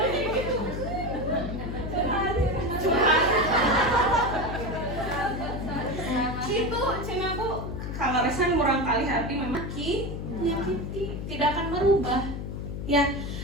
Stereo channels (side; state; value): left; noise; hum, 6 dB below the sound